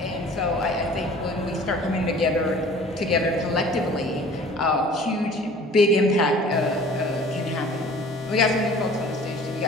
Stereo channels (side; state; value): both; normal; correlation 0.48